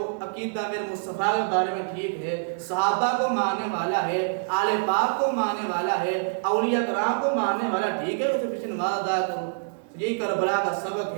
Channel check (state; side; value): silent; left; digital silence